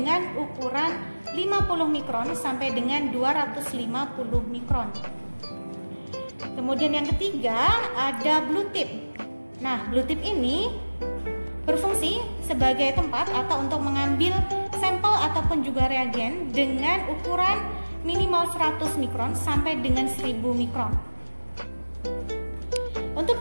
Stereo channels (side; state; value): both; inverted; correlation -1.00